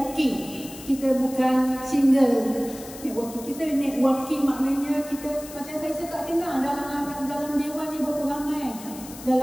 Kita bukan single networking. Kita networking maknanya kita, macam saya tak kenal dalam dewan ni berapa ramai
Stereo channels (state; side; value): noise; left; hiss, 15 dB below the sound